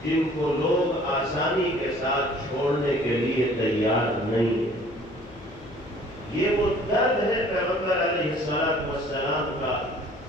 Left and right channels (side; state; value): left; noise; hum, 20 dB below the sound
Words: جن کو لوگ آسانی کے ساتھ چھوڑنے کے لیے تیار نہیں ہیں۔ یہ وہ درد ہے پیغمبر علیہ السلام کا،